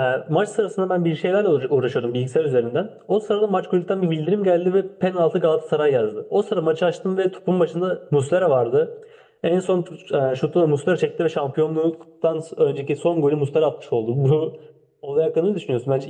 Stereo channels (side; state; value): both; identical; correlation 1.00